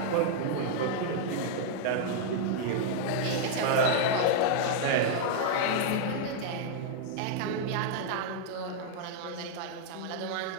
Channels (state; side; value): different; both; correlation -0.01